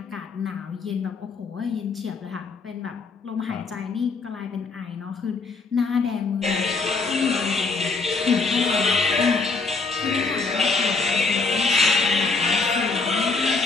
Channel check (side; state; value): right; quieter; 4.2 dB